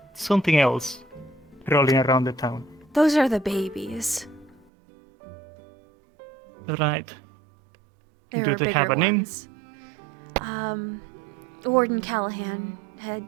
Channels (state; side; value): drops out; left; at 4.7 s